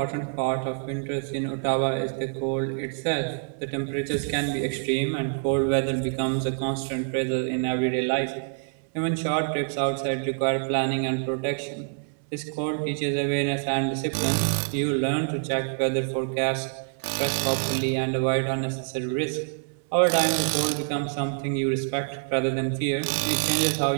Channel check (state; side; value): silent; left; digital silence